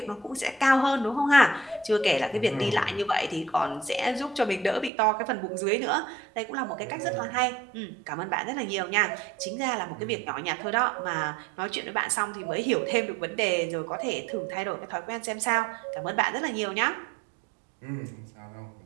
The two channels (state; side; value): drops out; left; at 4.9 s